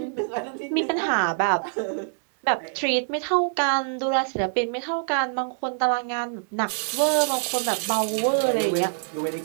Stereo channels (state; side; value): silent; left; digital silence